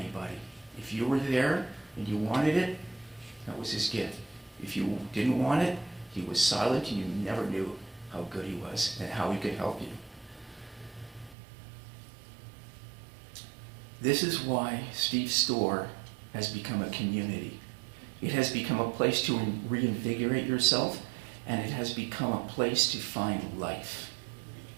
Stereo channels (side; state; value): left; drops out; at 11.4 s